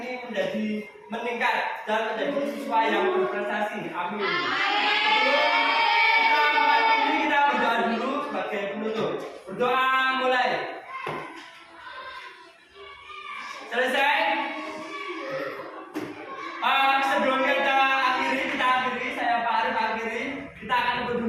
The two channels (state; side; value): identical; both; correlation 1.00